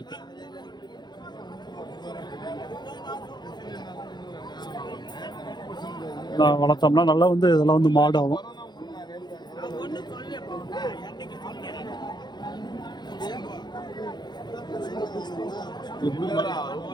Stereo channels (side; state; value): right; late; 0.21 ms